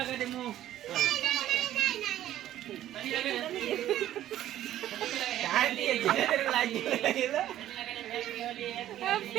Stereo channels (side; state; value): left; quieter; 12.7 dB